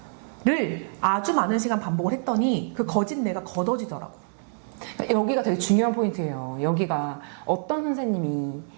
를 아주 많은 시간 반복을 했더니 그 거짓내가 걷어지더라고. 여기가 되게 중요한 포인트예요. 여기가 어떤 선생님이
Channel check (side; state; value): left; silent; 57 dB below the other